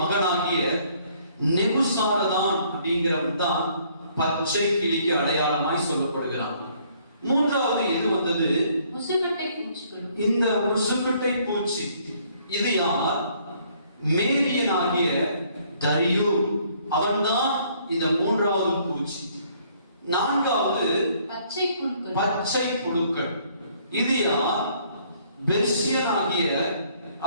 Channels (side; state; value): both; inverted; correlation -0.63